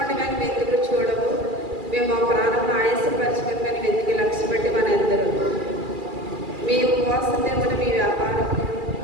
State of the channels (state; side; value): late; left; 2.4 ms